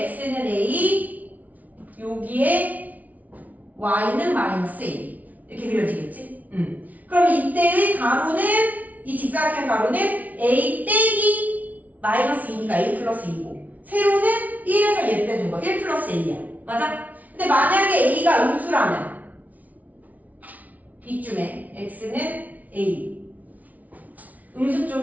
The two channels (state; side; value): late; left; 0.074 ms